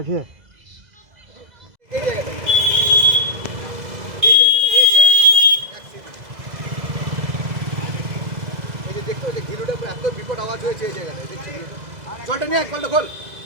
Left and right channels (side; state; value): left; late; 2.0 ms